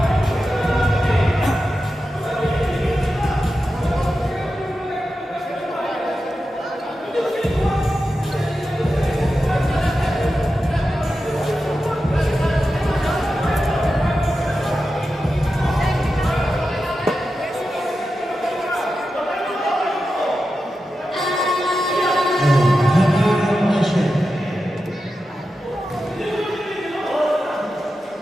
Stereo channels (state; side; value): normal; both; correlation 0.91